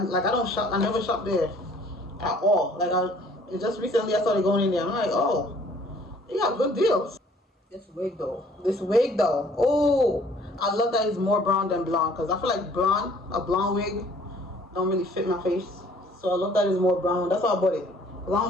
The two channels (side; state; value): both; normal; correlation 0.57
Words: don't shop. I never shop there at all. Like just recently I started going in there. I'm like, oh, they got good deals. This wig though. Oh, I love that it's more brown than blonde because I feel like a blonde wig don't really fit my face. So I love that it's more brown. That's why I bought it. I